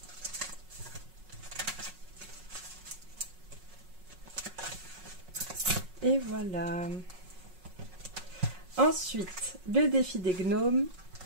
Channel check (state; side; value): late; left; 5.4 ms